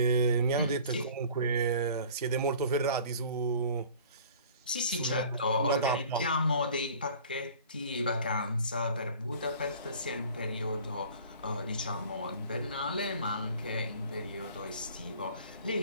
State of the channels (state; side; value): inverted; both; correlation -0.47